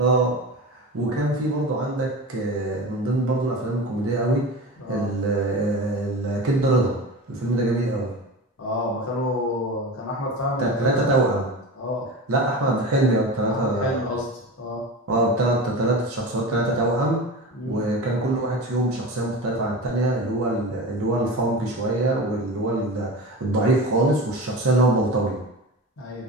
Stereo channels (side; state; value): both; normal; correlation 0.29